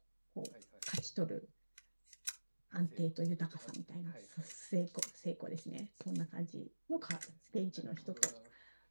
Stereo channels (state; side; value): inverted; both; correlation -1.00